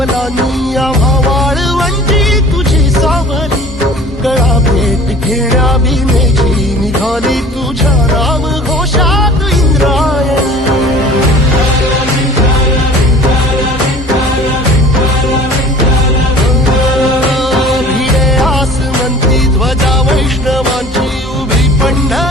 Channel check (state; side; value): normal; both; correlation 0.46